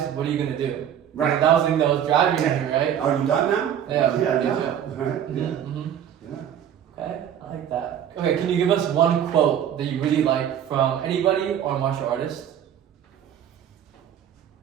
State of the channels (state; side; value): quieter; left; 9.7 dB